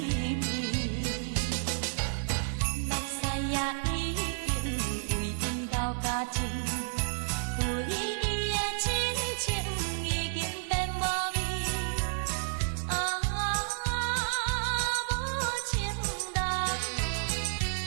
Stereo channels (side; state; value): left; silent; 57 dB below the other